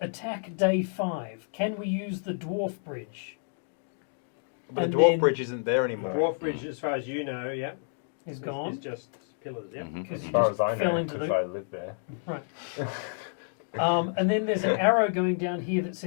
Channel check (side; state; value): right; silent; digital silence